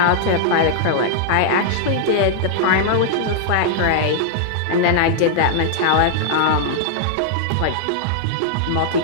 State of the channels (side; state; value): both; different; correlation -0.01